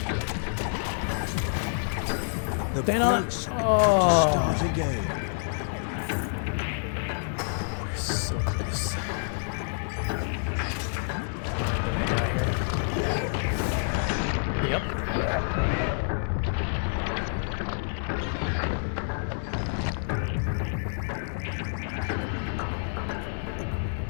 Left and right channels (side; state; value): right; silent; 59 dB below the other